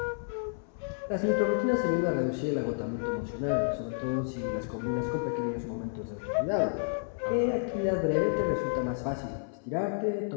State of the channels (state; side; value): silent; right; 57 dB below the other